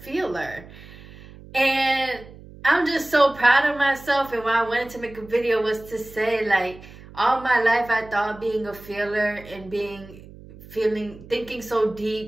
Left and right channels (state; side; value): noise; right; hum, 19 dB below the sound